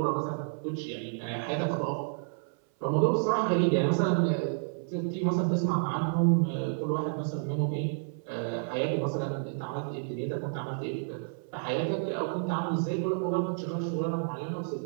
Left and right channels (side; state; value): left; silent; 58 dB below the other